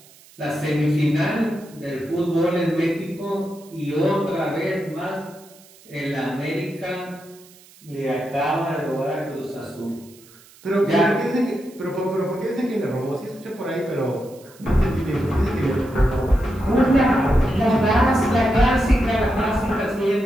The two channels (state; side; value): noise; right; hiss, 25 dB below the sound